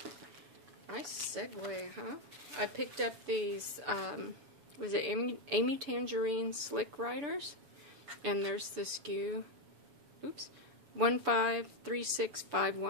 nice segue, huh? I picked up these, was it Amy Tangerine Slick Riders? And there's the SKU, oops,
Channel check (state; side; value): late; left; 6.9 ms